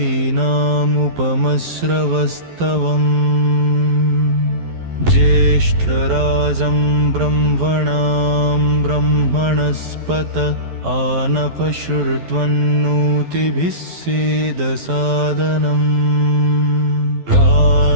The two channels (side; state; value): left; late; 12 ms